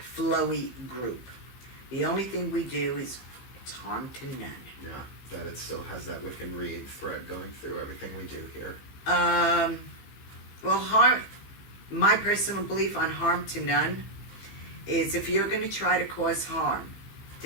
flowy group. The only thing we do is it's harm to none. Yeah, that it still has that Wiccan Reed thread going through everything we do here. Well, my personal belief on harm to none is if you're going to try to cause harm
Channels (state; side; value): late; right; 15 ms